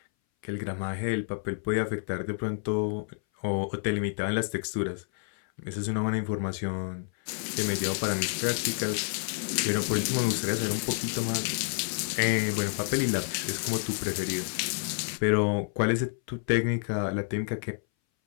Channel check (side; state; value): right; silent; 58 dB below the other